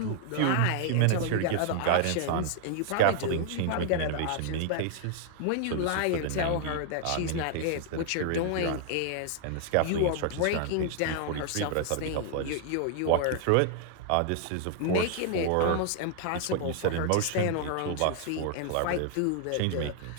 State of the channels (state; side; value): different; both; correlation -0.01